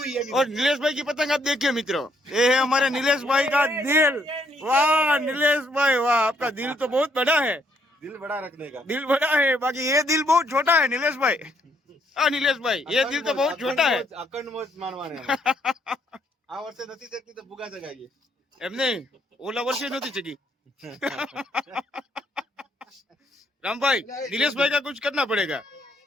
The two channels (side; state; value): both; normal; correlation 0.70